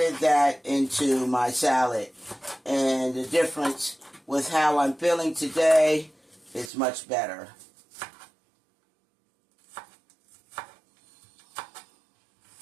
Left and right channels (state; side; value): drops out; left; at 6.7 s